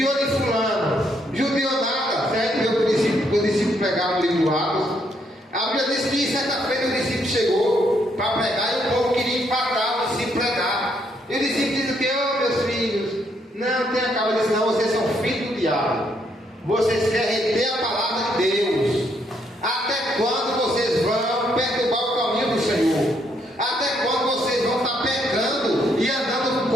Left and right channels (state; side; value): normal; both; correlation 0.73